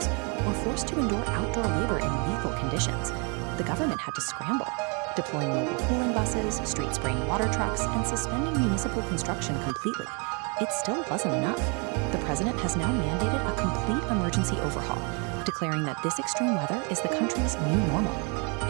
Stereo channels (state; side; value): quieter; left; 34.4 dB